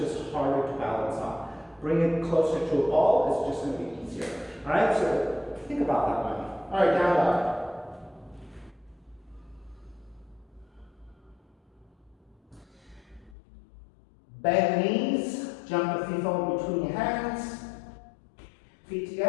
harder to balance on. Bring it closer to a ball, it's just going to be easier. All right, so think about that one. All right, down dog. Bend knees, jump the feet forward between your hands. Feet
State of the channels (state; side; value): drops out; right; at 13.4 s